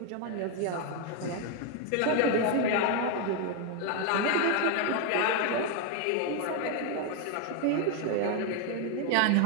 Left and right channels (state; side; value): different; both; correlation 0.01